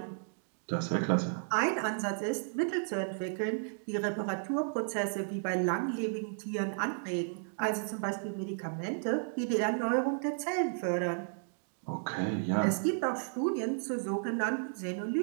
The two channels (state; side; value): silent; left; digital silence